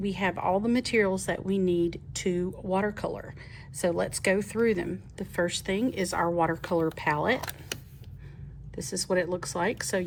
have all the materials that we need to watercolor. So let's go through them. The first thing is our watercolor palette. This is what it looks like. So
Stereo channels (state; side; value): identical; both; correlation 1.00